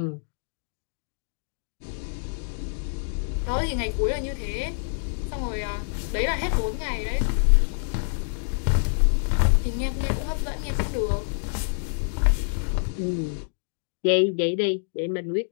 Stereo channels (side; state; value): right; silent; digital silence